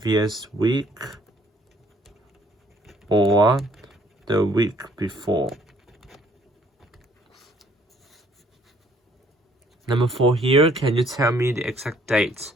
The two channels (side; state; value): both; normal; correlation 0.62